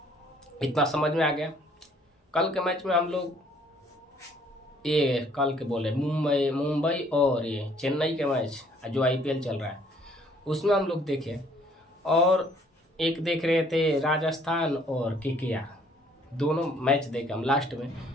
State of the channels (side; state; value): both; normal; correlation 0.61